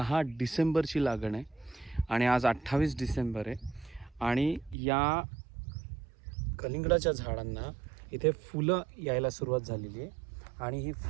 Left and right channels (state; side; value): drops out; left; at 4.8 s